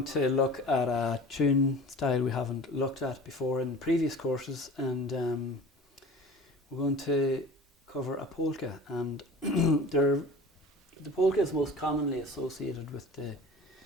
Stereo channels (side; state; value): both; normal; correlation 0.40